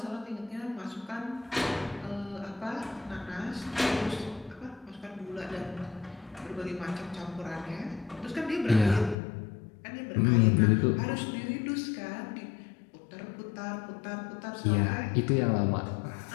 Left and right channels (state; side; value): drops out; right; at 9.2 s